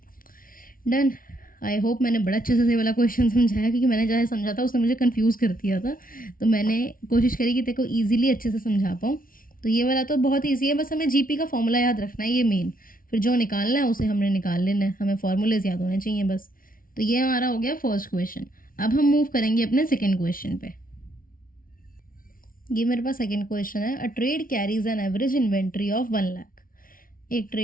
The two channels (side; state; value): right; late; 0.41 ms